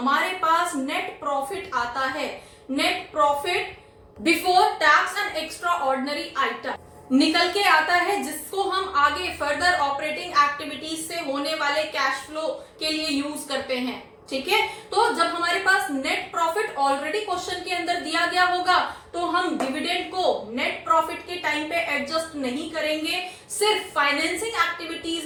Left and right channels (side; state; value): both; identical; correlation 1.00